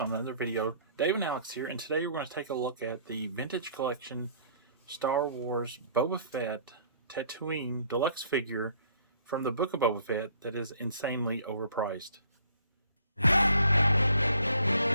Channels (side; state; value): both; inverted; correlation -0.58